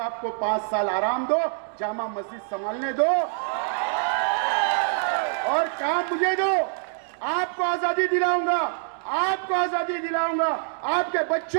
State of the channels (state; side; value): silent; left; 62 dB below the other